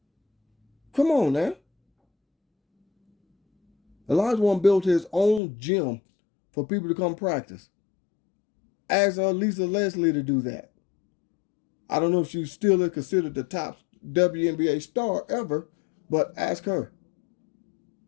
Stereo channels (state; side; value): drops out; right; at 5.4 s